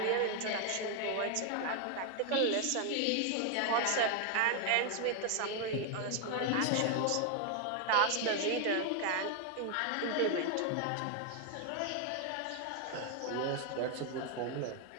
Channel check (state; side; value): different; both; correlation 0.00